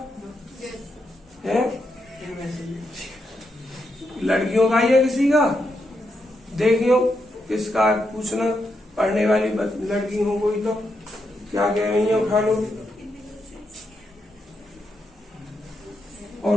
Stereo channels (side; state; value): both; normal; correlation 0.82